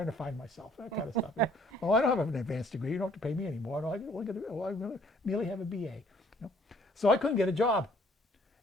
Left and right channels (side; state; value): both; normal; correlation 0.61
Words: to find myself, that kind of stuff. Oh, I don't have an advanced degree. You don't have to pay me anymore. No, I merely have a BA. So I couldn't get a job.